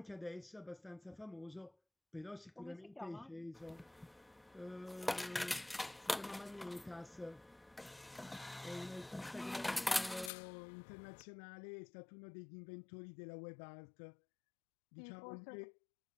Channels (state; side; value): drops out; right; at 10.3 s